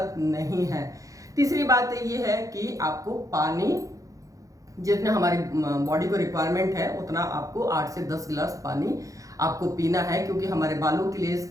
नहीं है। तीसरी बात ये है कि आपको पानी जितना हमारी बॉडी को रिक्वायरमेंट है उतना आपको 8 से 10 गिलास पानी आपको पीना है, क्योंकि हमारे बालों के लिए,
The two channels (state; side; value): late; left; 0.16 ms